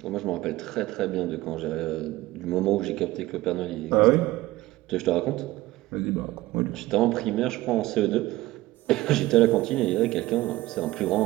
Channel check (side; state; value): left; quieter; 17.6 dB